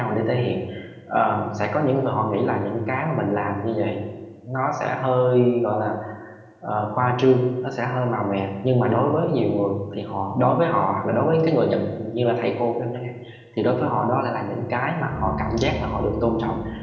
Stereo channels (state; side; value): identical; both; correlation 1.00